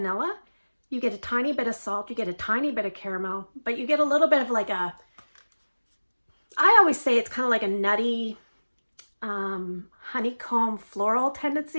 You get a tiny bit of salt, you get a tiny bit of caramel, but you get a little bit of like I always say it's kind of like a nutty, honeycomb floral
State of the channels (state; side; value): inverted; both; correlation -1.00